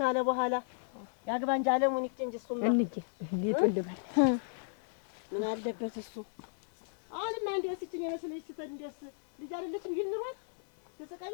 በኋላ ያግባ እንጂ አለሙን ይክንጂ እሱማ እንዴ ይጥልባል ምን አለበት እሱ። አሁንማ እንደው ሲችኝ የመስለሽ ስተን እንደስ ልጅ አይደለችም ይልንሯል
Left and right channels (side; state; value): right; silent; 55 dB below the other